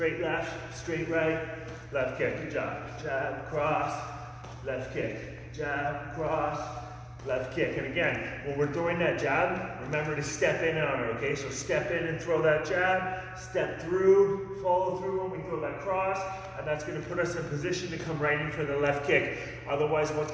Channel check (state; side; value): identical; both; correlation 1.00